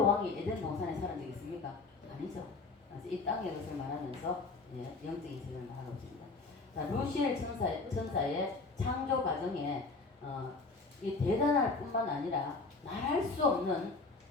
왕이 에덴 동산에 살은 적이 있습니까? 아니죠. 이 땅의 것을 말하면서 영적인 세계를 말하고 있습니다. 자, 루시엘 천사의 창조 과정에 이 대단할 뿐만 아니라 말할 수 없는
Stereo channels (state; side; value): quieter; right; 3.8 dB